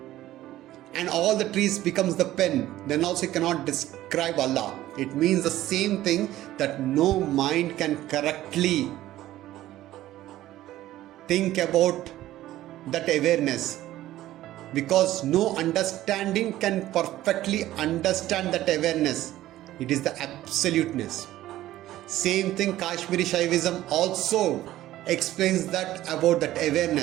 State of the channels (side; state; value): left; quieter; 14.6 dB